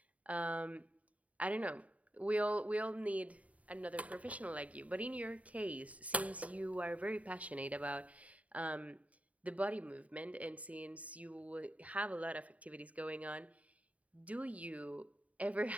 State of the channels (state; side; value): late; left; 0.068 ms